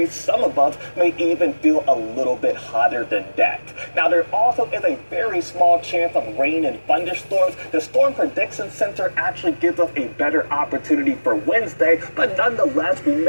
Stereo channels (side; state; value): both; inverted; correlation -1.00